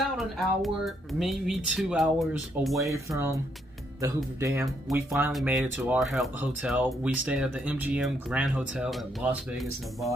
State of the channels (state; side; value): normal; both; correlation 0.74